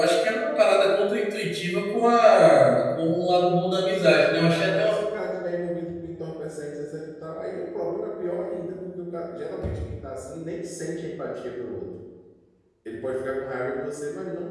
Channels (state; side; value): identical; both; correlation 1.00